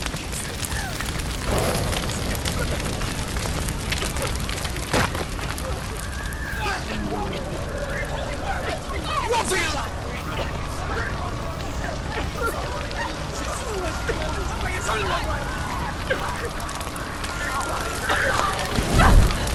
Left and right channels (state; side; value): identical; both; correlation 1.00